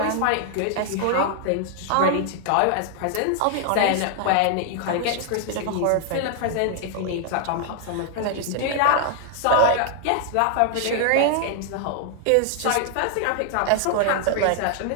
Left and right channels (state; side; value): different; both; correlation 0.00